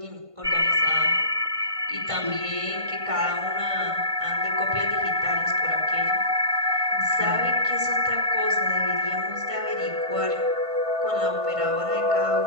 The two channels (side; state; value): left; late; 1.5 ms